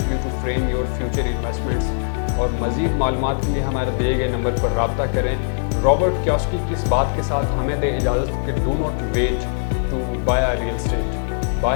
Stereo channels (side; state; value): right; silent; digital silence